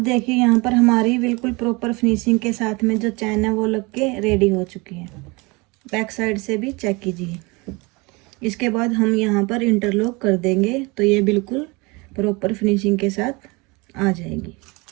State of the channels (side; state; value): left; quieter; 26.4 dB